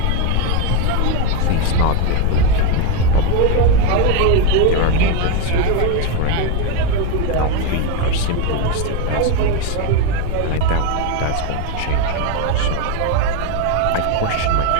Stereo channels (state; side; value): different; both; correlation 0.03